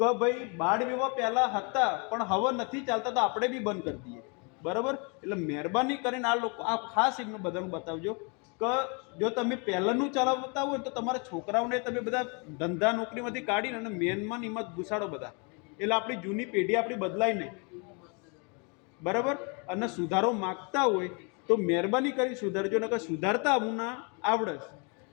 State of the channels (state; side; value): quieter; right; 34.3 dB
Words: ભાઈ બાળ વિવાહ પહેલા હતા પણ હવે નથી ચાલતા, તો આપણે બી બંધ કરી દઈએ બરાબર. એટલે મહેરબાની કરીને આ લોકો આ ખાસ એમને બધાને બતાવજો કે જો તમે પહેલાંનું ચલાવતા હોય તો તમારા છોકરાઓને તમે બધા ધંધા નોકરીમાંથી કાઢીને અને મેનમાં એમાં જ ઘુસાડો બધા. એટલે આપણી જૂની પેઢી આપણી બદલાય નહીં બરાબર. અને સુધારો માગતા હોય તો મહેરબાની કરી સુધારજો, ને કે સુધારતા હું ના આવડે